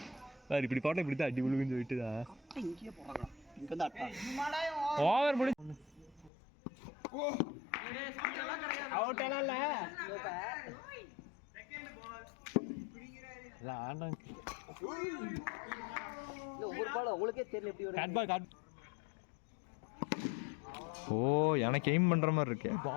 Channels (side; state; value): right; drops out; at 6.3 s